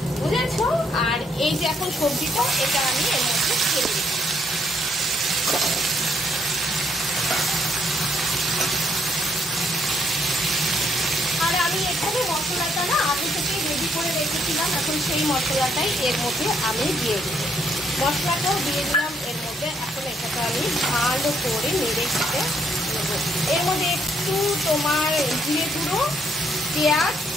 বুঝেছো? আর এই যে এখন সবজিটা, এটা আমি এর মধ্যে ছেড়ে দিচ্ছি। আর আমি এখানে মশলাটা না আগে থেকে রেডি করে রেখেছিলাম, এখন সেই মশলাটাই এর মধ্যে আমি দিয়ে দেবো। মশলাটাও দিয়ে দিলাম এর মধ্যে। এখন এটাকে আমি ভালো করে নেড়ে খেতে নেবো। এর মধ্যে একটু তোমার জিরে গুঁড়ো, পেঁয়াজ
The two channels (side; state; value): both; normal; correlation 0.71